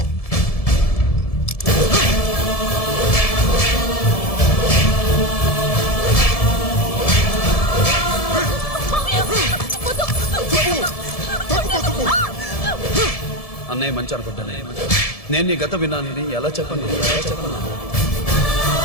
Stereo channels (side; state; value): right; late; 1.7 ms